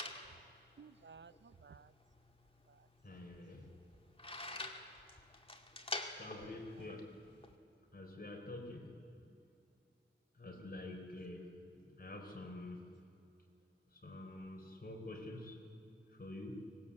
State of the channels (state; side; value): normal; both; correlation 0.34